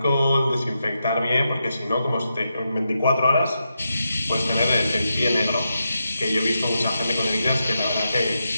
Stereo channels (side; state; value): both; inverted; correlation -0.86